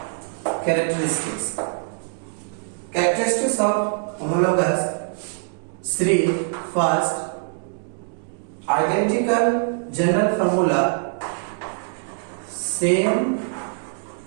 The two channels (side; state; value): left; silent; 63 dB below the other